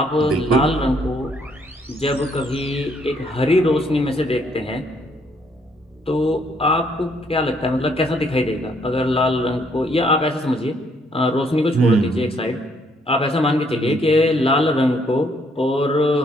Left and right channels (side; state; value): both; normal; correlation 0.68